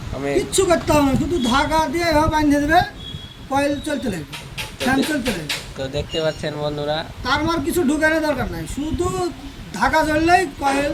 আমি কিচ্ছু করতে হবে না, শুধু ধাগা দিয়ে এভাবে বাঁধে দেবে, কয়েল চলতে লাগবে, ফ্যান চলতে লাগবে। তো দেখতে পাচ্ছেন বন্ধুরা, তার মার কিছু ঢুকানোর দরকার নাই, শুধু ধাগা জ্বললেই কয়েল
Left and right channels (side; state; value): both; identical; correlation 1.00